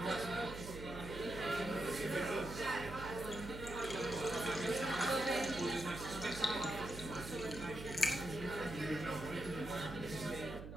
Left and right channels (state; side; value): noise; right; hum, 10 dB below the sound